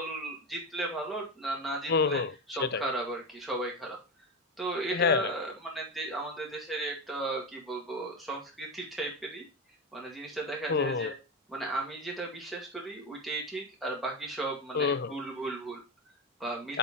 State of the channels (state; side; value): normal; both; correlation 0.16